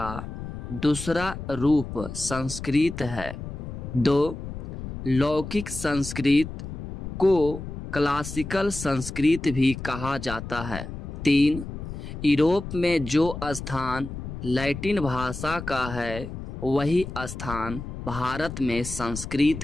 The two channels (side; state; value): left; noise; rumble, 8 dB below the sound